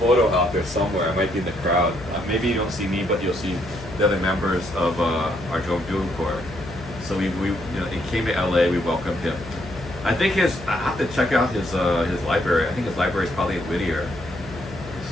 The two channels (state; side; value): noise; left; hum, 15 dB below the sound